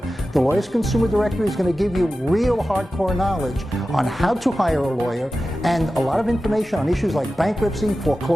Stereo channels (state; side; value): normal; both; correlation 0.94